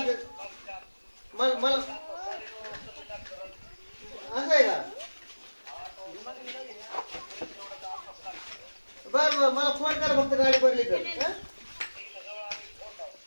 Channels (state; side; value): inverted; both; correlation -1.00